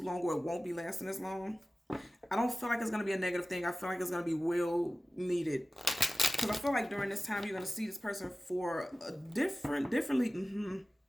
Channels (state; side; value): normal; both; correlation 0.96